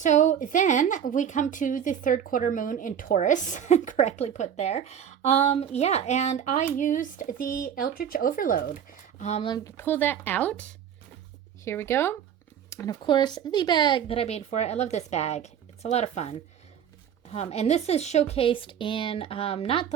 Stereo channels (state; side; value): quieter; left; 8.7 dB